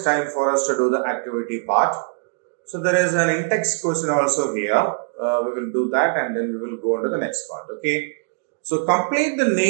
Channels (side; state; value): left; silent; 59 dB below the other